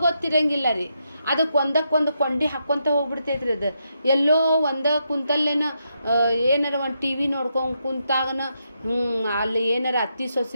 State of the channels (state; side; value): inverted; both; correlation -0.82